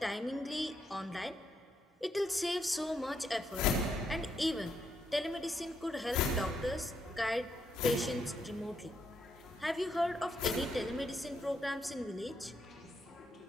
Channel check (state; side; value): normal; both; correlation 0.78